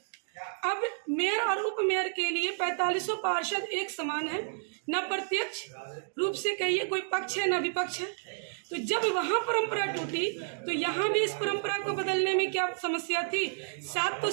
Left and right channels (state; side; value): silent; left; digital silence